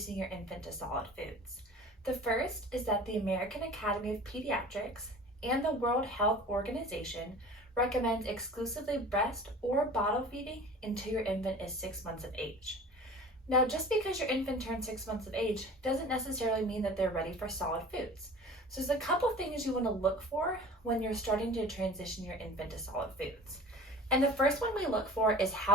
your infant to solid foods. The first is that the American Academy of Pediatrics and the World Health Organization recommends exclusively breast or bottle feeding until your infant is 6 months of age. Now, just because your infant turns 6 months of age doesn't necessarily mean that they're ready for solid foods. So there's a couple things you want to look for when you're starting to transition your infant to solid foods. And the first one we look for is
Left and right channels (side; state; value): both; normal; correlation 0.41